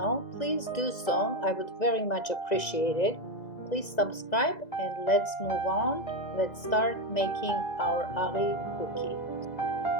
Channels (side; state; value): right; late; 2.0 ms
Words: please do so. I would very much appreciate it. Please subscribe and let's move on. Let's start making our SAVORY cookie.